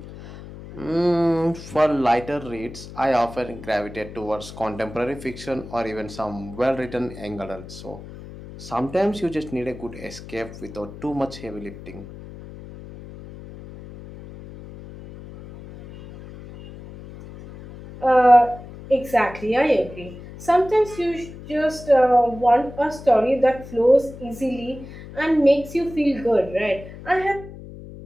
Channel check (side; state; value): left; noise; hum, 15 dB below the sound